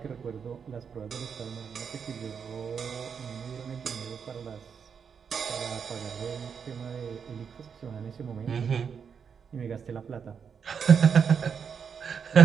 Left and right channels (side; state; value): left; quieter; 6.7 dB